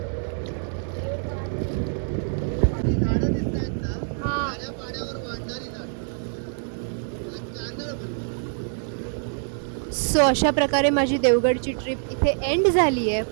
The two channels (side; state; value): left; silent; 62 dB below the other